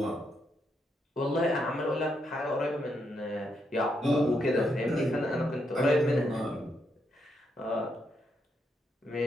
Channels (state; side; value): normal; both; correlation 0.79